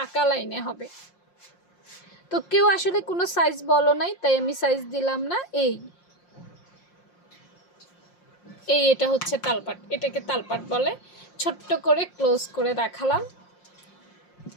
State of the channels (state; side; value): late; right; 5.6 ms